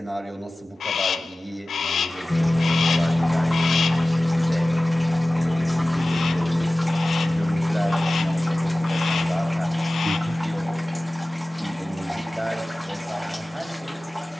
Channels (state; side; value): normal; both; correlation 0.97